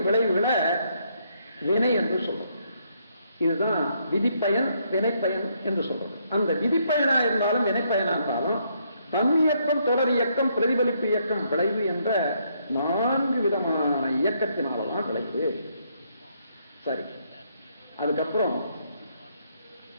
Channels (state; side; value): inverted; both; correlation -0.73